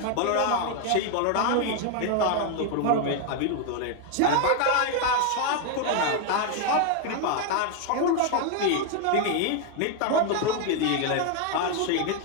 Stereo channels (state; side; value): different; both; correlation 0.01